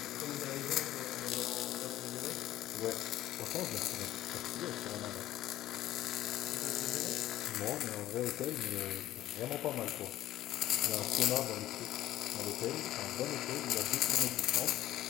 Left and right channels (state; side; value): quieter; right; 14.0 dB